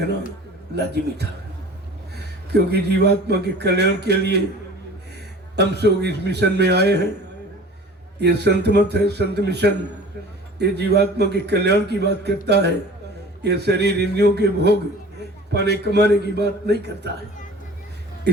लाजिमी था, क्योंकि जीवात्मा के कल्याण के लिए हम सब इस मिशन में आए हैं। ये संत मत है, संत मिशन, ये जीवात्मा के कल्याण की बात करता है। ये शरीर इंद्रियों के भोग पाने कमाने की बात नहीं करता है।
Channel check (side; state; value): both; normal; correlation 0.43